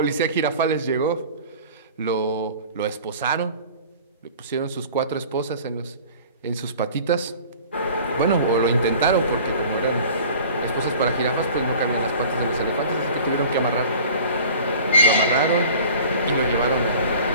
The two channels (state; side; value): inverted; both; correlation -0.45